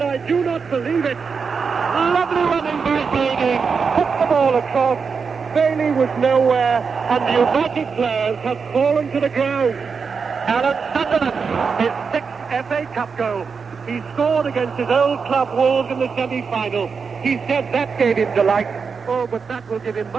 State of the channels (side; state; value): left; quieter; 5.5 dB